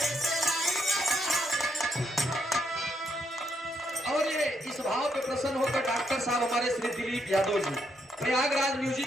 प्रसन्न होकर डॉक्टर साहब हमारे श्री दिलीप यादव जी प्रयागराज म्यूजिक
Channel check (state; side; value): normal; both; correlation 0.77